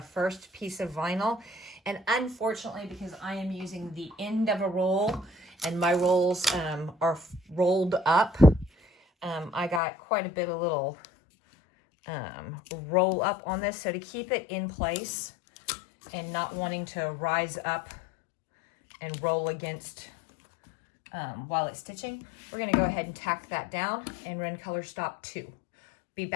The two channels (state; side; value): drops out; right; at 9.8 s